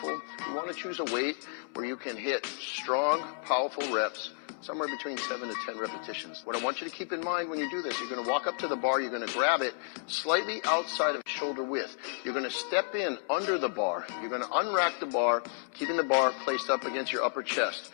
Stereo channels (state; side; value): silent; right; 57 dB below the other